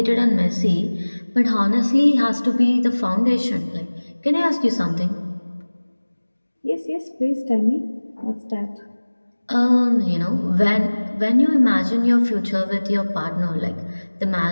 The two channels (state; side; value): inverted; both; correlation -1.00